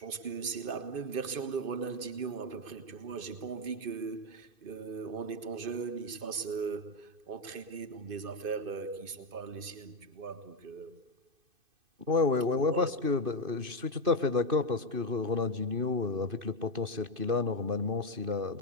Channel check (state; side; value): late; left; 2.5 ms